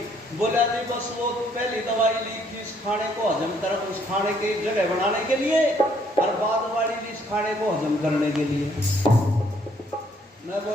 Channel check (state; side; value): normal; both; correlation 0.66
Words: बोला जी बस वो पहली दवाई ली थी इस खाने को हजम कर, उस खाने की जगह बनाने के लिए, और बाद वाली ली इस खाने को हजम करने के लिए। मैं